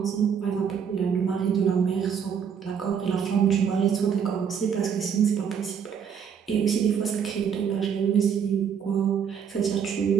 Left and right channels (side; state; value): left; quieter; 7.4 dB